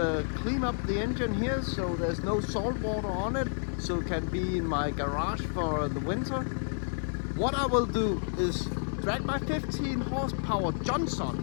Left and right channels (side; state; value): right; silent; digital silence